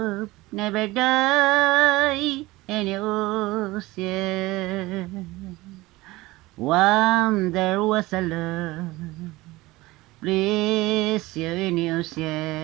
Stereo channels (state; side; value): quieter; left; 20.0 dB